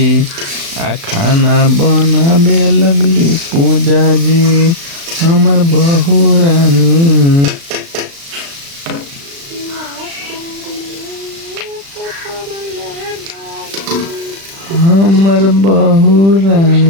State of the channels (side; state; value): left; late; 36 ms